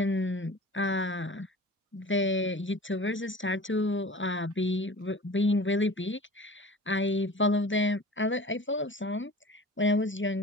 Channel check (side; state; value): both; normal; correlation 0.40